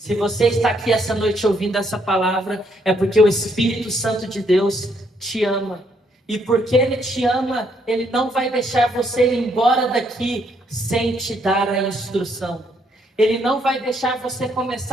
você está aqui essa noite ouvindo essa palavra, é porque o Espírito Santo de Deus te ama. E porque Ele te ama, Ele não vai deixar você ir embora daqui sem te dar a instrução. Ele não vai deixar você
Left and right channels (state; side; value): normal; both; correlation 0.72